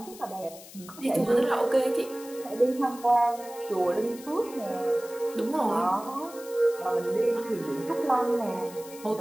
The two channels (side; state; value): left; noise; hiss, 17 dB below the sound